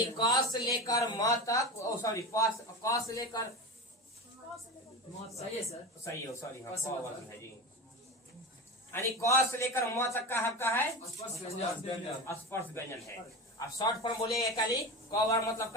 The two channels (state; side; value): normal; both; correlation 0.25